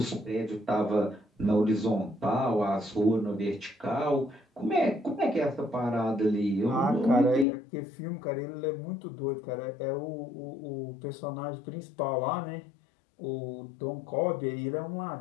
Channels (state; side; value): drops out; right; at 7.5 s